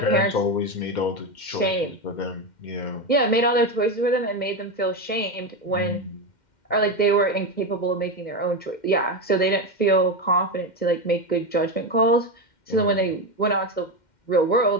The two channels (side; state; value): right; late; 2.1 ms